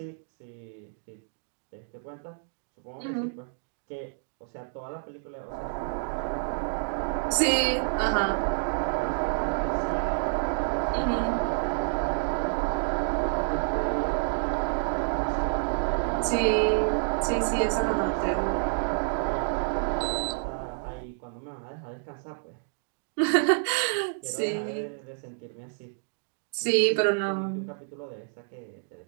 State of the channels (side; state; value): left; silent; digital silence